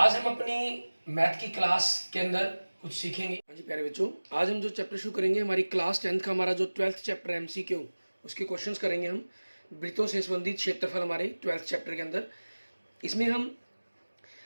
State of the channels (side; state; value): both; inverted; correlation -1.00